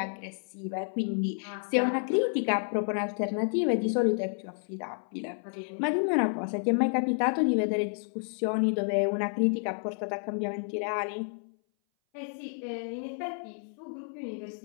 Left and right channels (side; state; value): right; silent; 58 dB below the other